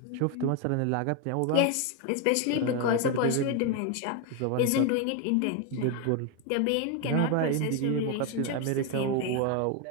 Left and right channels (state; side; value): different; both; correlation 0.01